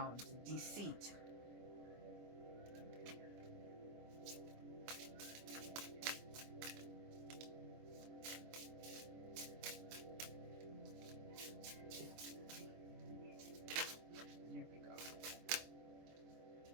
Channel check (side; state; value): left; late; 25 ms